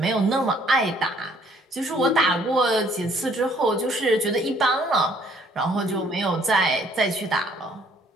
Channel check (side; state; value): both; normal; correlation 0.62